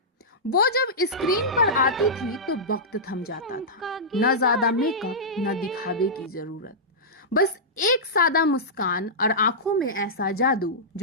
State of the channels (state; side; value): normal; both; correlation -0.14